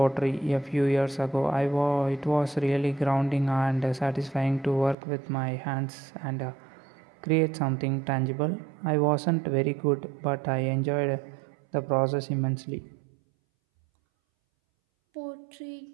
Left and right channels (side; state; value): left; drops out; at 5.0 s